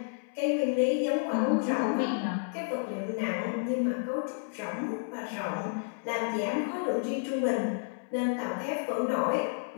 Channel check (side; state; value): right; silent; 57 dB below the other